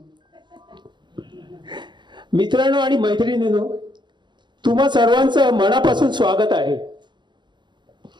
मैत्रिणींनो, तुम्हा सर्वांचं मनापासून स्वागत आहे.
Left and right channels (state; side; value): late; left; 0.22 ms